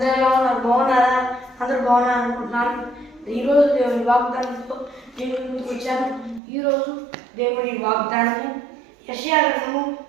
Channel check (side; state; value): left; drops out; at 6.4 s